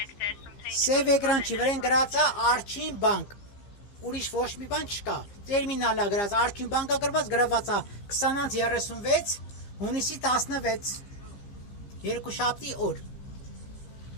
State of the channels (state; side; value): late; right; 15 ms